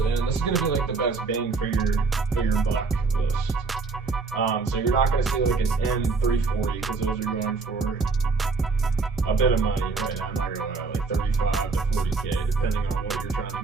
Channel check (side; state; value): left; quieter; 4.3 dB